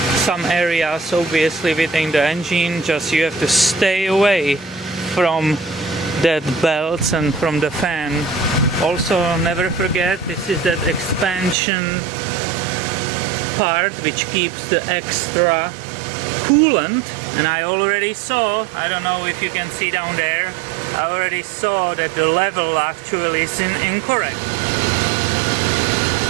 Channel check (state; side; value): drops out; left; at 11.6 s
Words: some areas obviously within the engine. Just you have to stay away from that belts and from the fan. Also never forget, this is that expansion part which keeps the extra coolant, and I already saw, I don't know if you can see down there, I already saw that the level actually is incorrect.